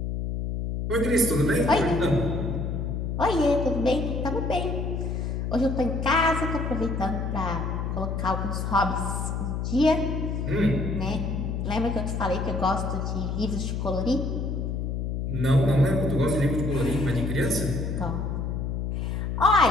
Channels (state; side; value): noise; left; hum, 2 dB below the sound